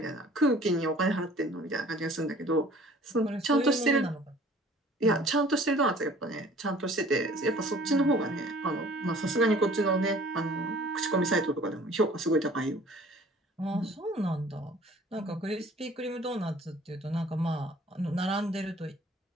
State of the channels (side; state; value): both; normal; correlation 0.51